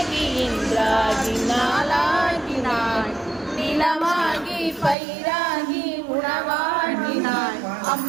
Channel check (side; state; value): left; drops out; at 5.0 s